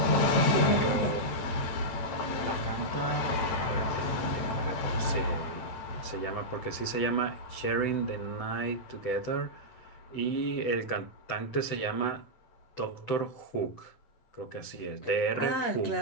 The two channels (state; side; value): late; right; 7.9 ms